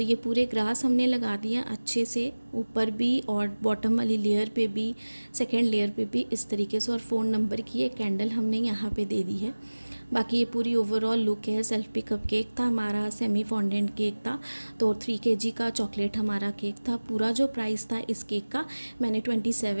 ये पूरे ग्रास हमने लगा दिया अच्छे से, ऊपर भी और बॉटम वाली लेयर पे भी, सेकेंड लेयर पे भी इस तरीके से। और फ़ोन नंबर की एक कैंडल हमने यहाँ पे दे दी है। बाकी ये पूरी ओवरऑल लुक है। सेल्फ पिकअप केक था हमारा, सेमी फॉन्डेंट केक था, तो 3 kg का चॉकलेट हमारा केक था। पूरा जो प्राइस था इस केक का मैंने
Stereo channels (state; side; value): inverted; both; correlation -1.00